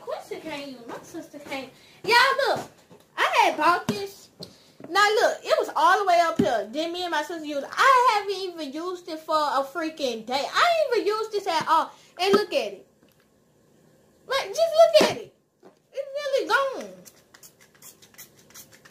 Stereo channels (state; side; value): identical; both; correlation 1.00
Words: Quincy can't use. My sister can't. Y'all, look. I had bought this. Now, look. It was all the way up here. Then me and my sister used it. I haven't even used it for a freaking day. I ain't even used this at all. And look at it. Like, just look at it. It's really gone.